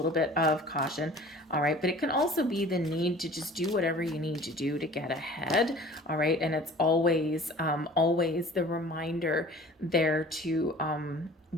bit of caution, all right? But it can also be the need to just do whatever you need to do to get ahead, all right? And it's always, always the reminder there to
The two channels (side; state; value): both; normal; correlation 0.46